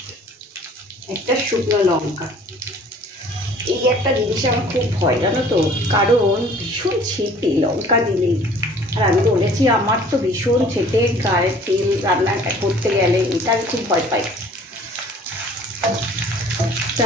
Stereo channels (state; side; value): normal; both; correlation 0.52